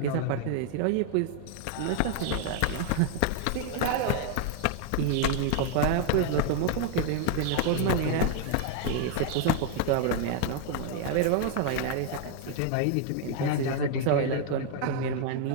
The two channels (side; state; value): both; different; correlation 0.00